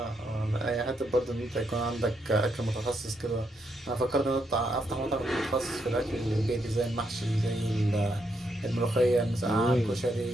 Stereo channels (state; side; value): normal; both; correlation 0.78